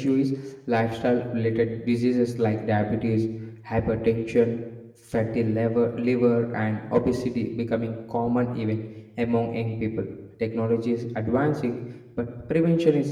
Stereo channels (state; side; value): identical; both; correlation 1.00